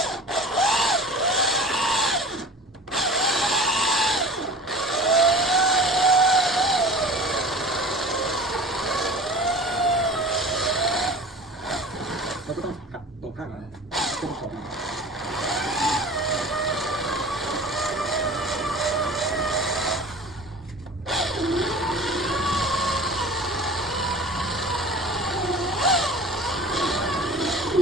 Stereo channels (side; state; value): both; normal; correlation 0.39